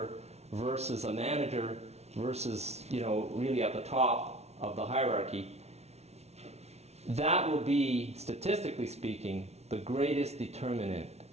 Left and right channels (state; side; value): late; left; 0.31 ms